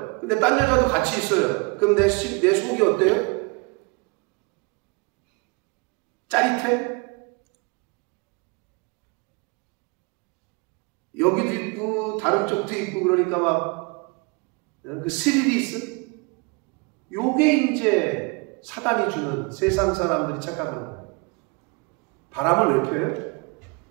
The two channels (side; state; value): left; quieter; 30.4 dB